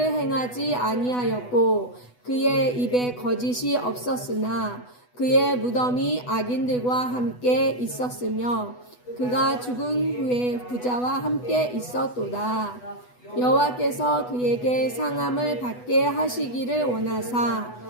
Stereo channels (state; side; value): late; right; 8.1 ms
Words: 행하지 아니하였고 그의 입에 거짓이 없었으나 그의 무덤이 악인들과 함께 있었으며 그가 죽은 후에 부자와 함께 있었도다. 여호와께서 그에게 상함을 받게 하시기를 원하사